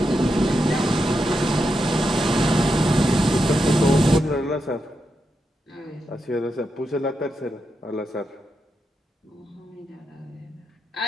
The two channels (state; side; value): normal; both; correlation 0.86